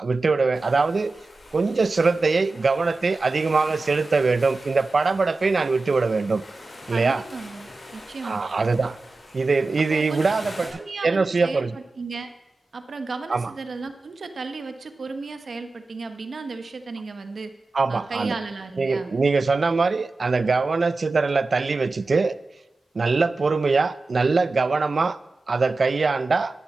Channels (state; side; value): quieter; left; 3.7 dB